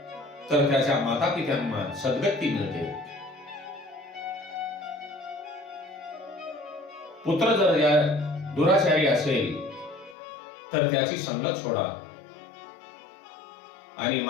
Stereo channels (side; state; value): right; drops out; at 10.2 s